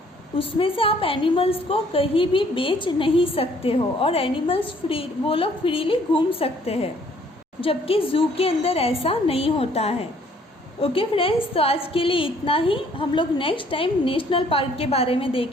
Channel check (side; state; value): both; normal; correlation 0.61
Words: उसमें से आप एनिमल्स को कहीं भी बेच नहीं सकते हो और एनिमल्स वो लोग फ्रीली घूम सकते हैं, जबकि ज़ू के अंदर ऐसा नहीं होता है। ओके फ्रेंड्स, तो आज के लिए इतना ही। हम लोग नेक्स्ट टाइम नेशनल पार्क के बारे में